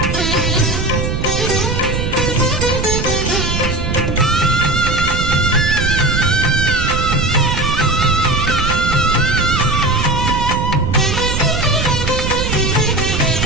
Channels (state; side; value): noise; right; rumble, 1 dB below the sound